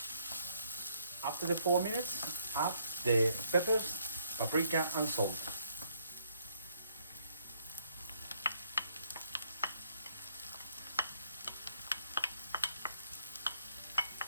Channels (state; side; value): inverted; both; correlation -0.70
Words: After the 4 minutes, add the peppers, paprika, and salt.